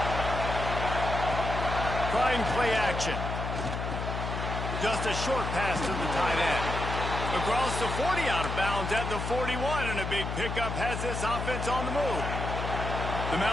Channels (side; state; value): left; noise; hum, 4 dB below the sound